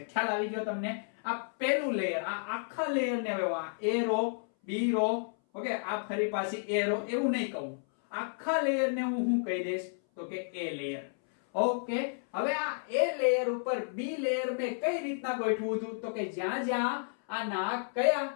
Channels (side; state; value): right; silent; 57 dB below the other